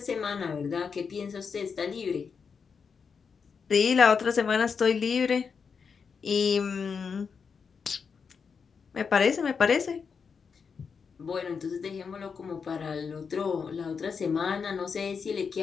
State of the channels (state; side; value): quieter; right; 5.9 dB